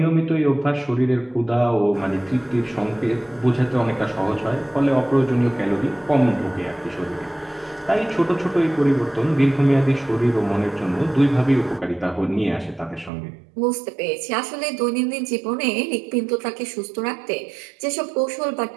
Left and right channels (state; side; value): drops out; left; at 13.1 s